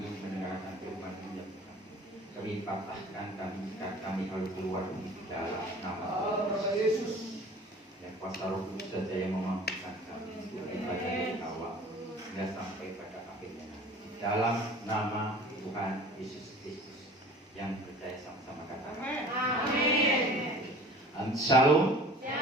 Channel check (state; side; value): normal; both; correlation 0.45